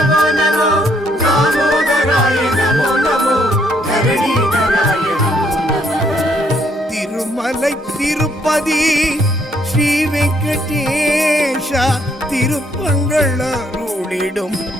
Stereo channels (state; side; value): normal; both; correlation 0.70